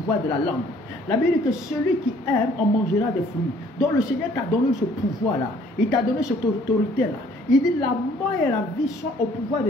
de la langue. La Bible dit que celui qui aime en mangera des fruits. Donc le Seigneur t'a donné ce pouvoir-là. Il t'a donné cette autorité-là. Il dit la mort et la vie sont au pouvoir de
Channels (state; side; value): normal; both; correlation 0.59